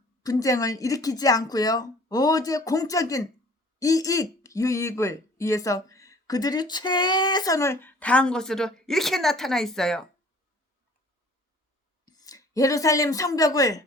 분쟁을 일으키지 않고요. 오직 공적인 이익, 유익을 위해서 그들이 최선을 다한 것으로 이렇게 나타나 있어요. 예루살렘 성벽을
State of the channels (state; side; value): normal; both; correlation 0.52